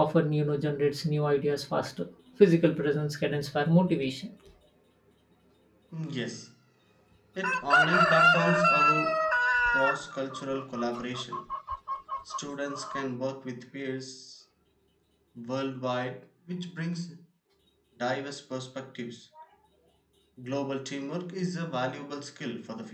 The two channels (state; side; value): identical; both; correlation 1.00